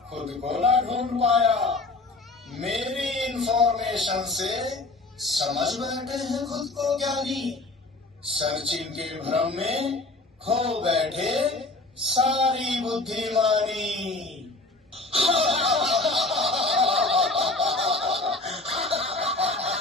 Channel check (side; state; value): right; quieter; 3.1 dB